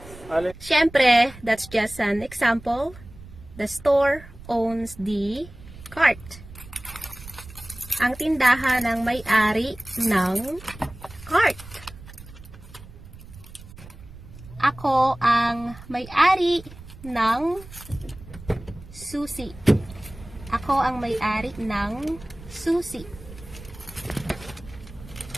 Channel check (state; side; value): noise; right; rumble, 17 dB below the sound